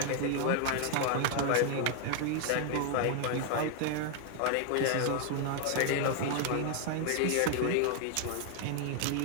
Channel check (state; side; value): different; both; correlation 0.00